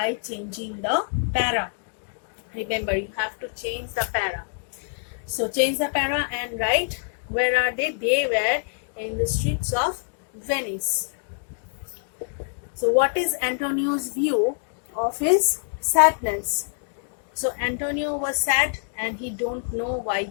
changing the para. Remember, you have to change the para. So change the para and write, where are they? They were in the streets of Venice. So what is Antonio's view of his sadness? So Antonio was sad and he don't know why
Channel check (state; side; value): silent; right; digital silence